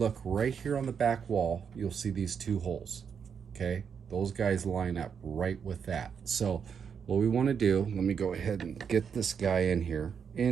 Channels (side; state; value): left; quieter; 7.0 dB